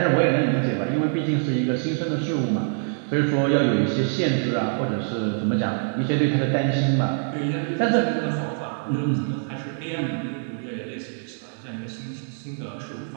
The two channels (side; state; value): left; silent; 62 dB below the other